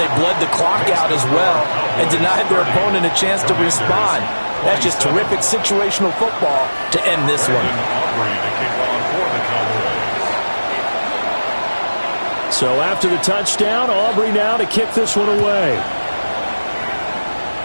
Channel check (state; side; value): inverted; both; correlation -1.00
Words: bled the clock out as well and denied their opponent a chance to respond. That's just terrific situational football to end this one. So after the touchdown, Aubrey now to kick this one away.